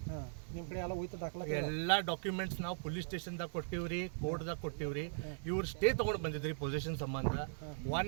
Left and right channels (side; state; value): left; silent; 52 dB below the other